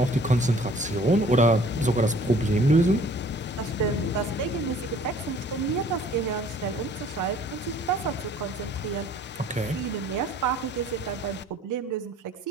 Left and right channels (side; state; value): both; normal; correlation 0.54